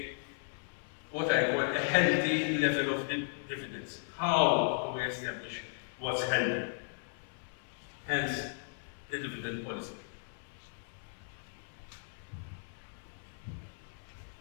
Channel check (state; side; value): silent; right; 54 dB below the other